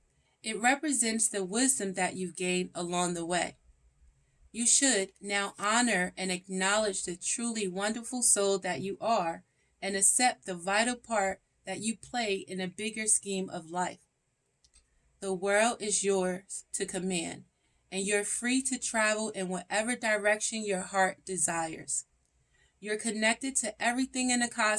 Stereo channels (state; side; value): identical; both; correlation 1.00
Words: it represents the wisdom that you've gained along the way. You should now honor and acknowledge the truly wonderful soul that you are and accept the vital part that you play in a bigger scheme of life. The world is yours to command, and you're free to travel in whatever direction your heart desires. You're connected to everything in the